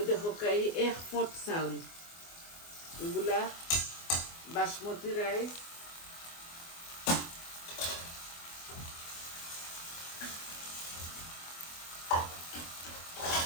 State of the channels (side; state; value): right; late; 24 ms